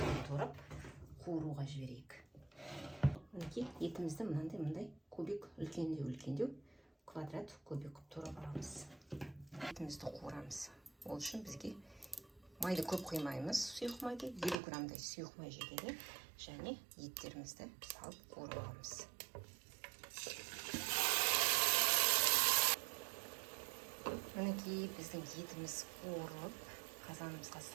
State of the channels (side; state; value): left; drops out; at 14.6 s